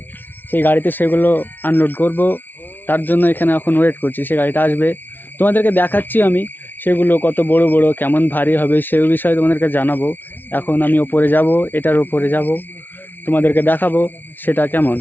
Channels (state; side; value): late; right; 0.089 ms